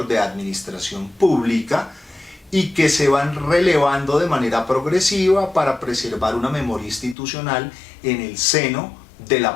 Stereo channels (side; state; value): right; drops out; at 7.2 s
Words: de Administración Pública, y que se van relevando de manera progresiva para preservar una memoria institucional en el seno de